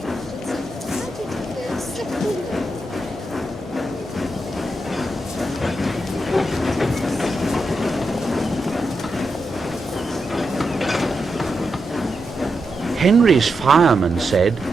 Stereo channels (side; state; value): both; normal; correlation 0.86